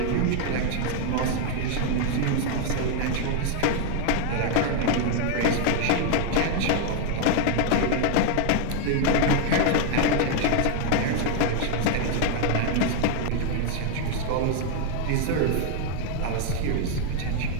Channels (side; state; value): both; different; correlation 0.00